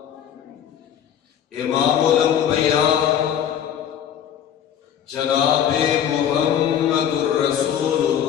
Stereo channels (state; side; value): quieter; right; 9.4 dB